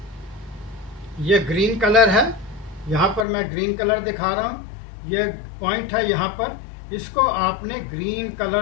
ये ग्रीन कलर है, यहाँ पर मैं ग्रीन कलर दिखा रहा हूँ, ये पॉइंट है यहाँ पर, इसको आपने ग्रीन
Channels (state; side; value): drops out; right; at 3.2 s